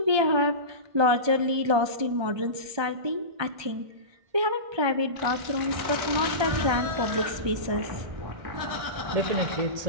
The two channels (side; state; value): left; late; 1.3 ms